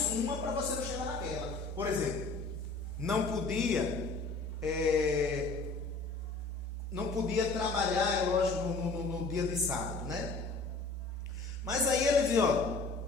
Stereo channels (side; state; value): right; quieter; 3.6 dB